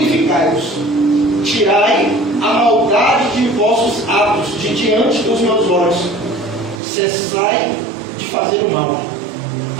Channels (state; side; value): drops out; left; at 6.8 s